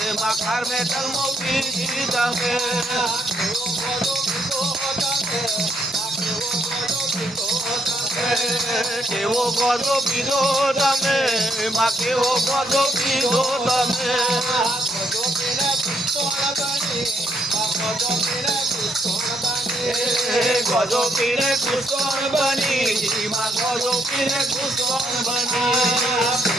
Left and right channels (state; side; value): normal; both; correlation 0.74